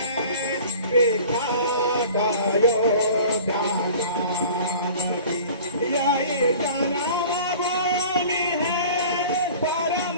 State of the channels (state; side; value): inverted; both; correlation -0.44